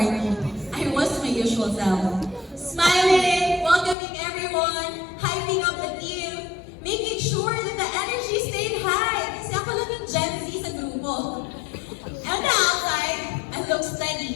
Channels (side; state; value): right; drops out; at 4.0 s